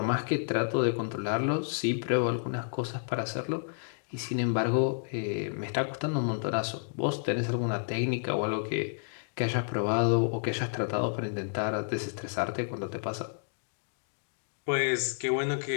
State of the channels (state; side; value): silent; right; digital silence